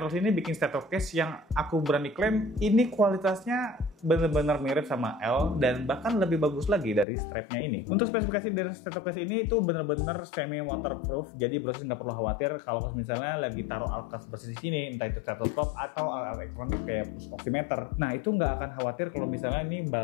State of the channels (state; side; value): drops out; right; at 7.1 s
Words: ini bikin stethoscope yang aku berani klaim ini kualitasnya benar-benar mirip sama L dan bahkan lebih bagus lagi dari strapnya ini. Untuk spesifikasi dari stethoscope ini itu benar-benar semi waterproof, jadi proses nggak perlu khawatir kalau misalnya lagi taruh alkes bersih di sini, entah itu stethoscope atau alat elektronik kayak pulse oximeter. Nah, itu nggak akan khawatir kalau misalnya ini